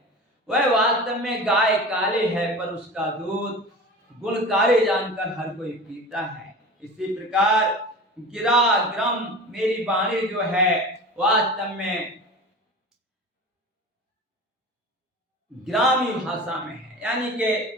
वह वास्तव में गाय काली है, पर उसका दूध गुणकारी जानकर हर कोई पीता है। इसी प्रकार गिरा ग्रम मेरी वाणी जो है वास्तव में ग्रामीण भाषा में है, यानी कि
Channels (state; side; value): normal; both; correlation 0.34